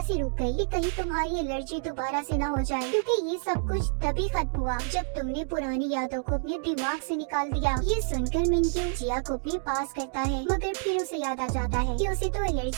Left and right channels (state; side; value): silent; left; digital silence